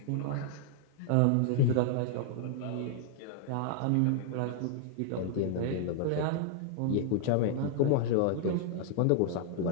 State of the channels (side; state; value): both; different; correlation -0.01